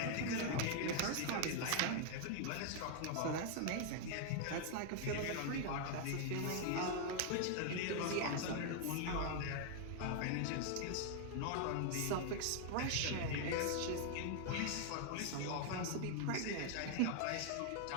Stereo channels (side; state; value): both; different; correlation 0.00